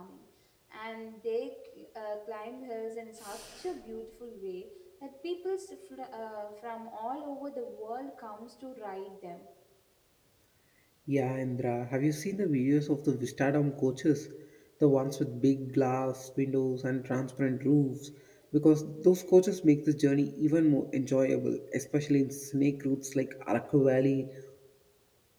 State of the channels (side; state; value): both; identical; correlation 1.00